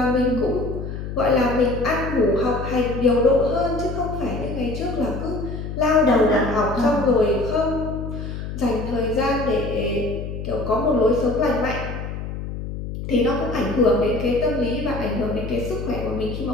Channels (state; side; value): noise; left; hum, 7 dB below the sound